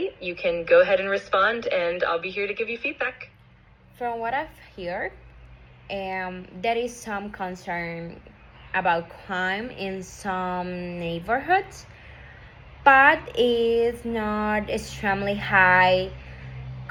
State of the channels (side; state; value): both; identical; correlation 1.00